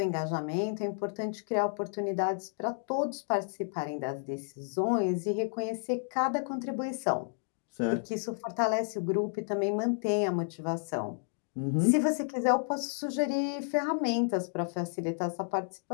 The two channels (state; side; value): silent; right; digital silence